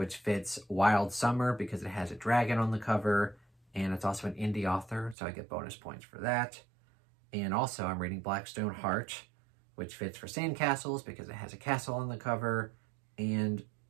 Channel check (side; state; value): left; drops out; at 5.2 s